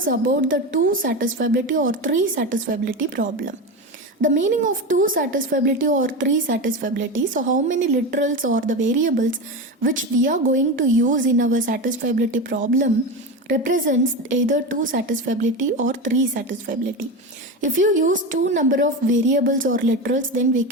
about the two satisfiability or three satisfiability problem. The meaning of two satisfiability or three satisfiability. So how many literals or the variables which we are going to use in our satisfiability problem represents either two satisfiability or three satisfiability. If you use two number of variables or literals, then we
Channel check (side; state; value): both; normal; correlation 0.20